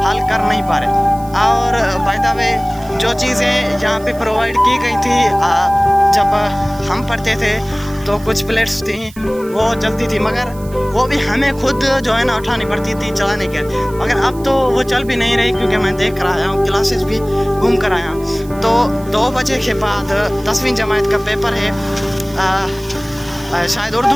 नहीं पा रहे। और बाय द वे जो चीज़ें यहाँ पे प्रोवाइड की गई थी जब हम पढ़ते थे तो कुछ प्लेट्स थी वो चलती थी, मगर वो भी हमें खुद जो है ना उठानी पड़ती थी चलाने के। मगर अब तो वो चल भी नहीं रही, क्योंकि मैं देख कर आया हूँ, क्लासेस भी घूम कर आया हूँ। तो 2 बजे के बाद 10वीं जमात का पेपर है, शायद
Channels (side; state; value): right; noise; hiss, 22 dB below the sound